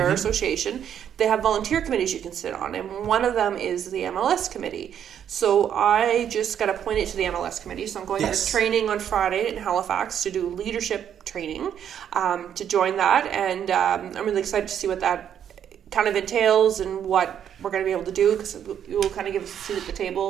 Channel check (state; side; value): quieter; left; 9.2 dB